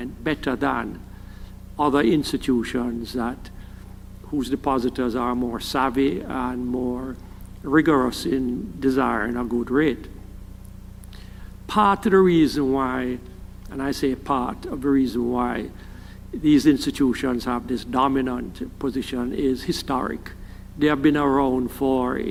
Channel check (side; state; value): both; identical; correlation 1.00